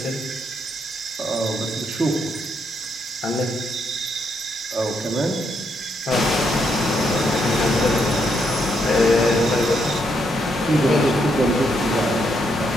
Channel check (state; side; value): normal; both; correlation 0.77